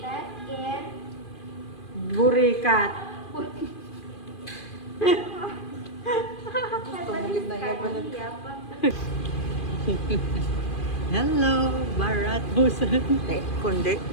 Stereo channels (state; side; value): late; right; 2.4 ms